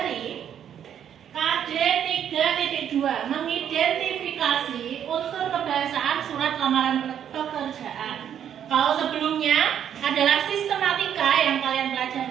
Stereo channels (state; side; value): quieter; left; 9.3 dB